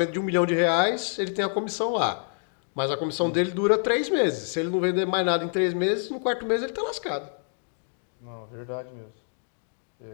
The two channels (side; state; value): right; silent; digital silence